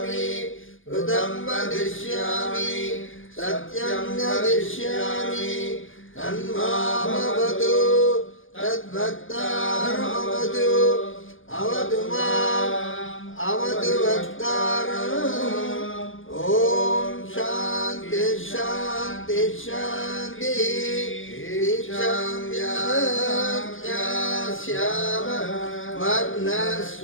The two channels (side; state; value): right; late; 0.58 ms